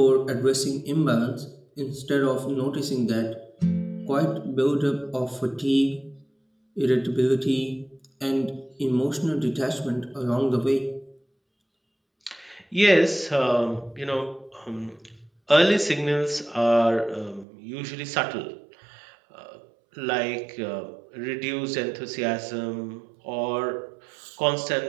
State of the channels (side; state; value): left; drops out; at 17.4 s